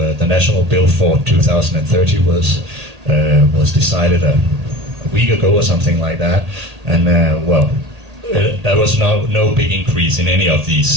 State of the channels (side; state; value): left; late; 1.8 ms